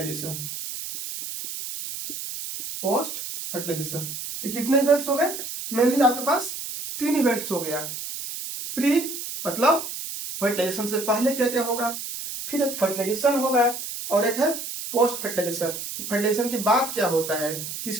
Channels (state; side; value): noise; right; hiss, 7 dB below the sound